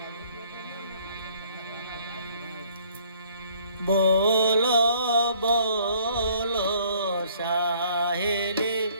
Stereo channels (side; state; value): both; inverted; correlation -0.60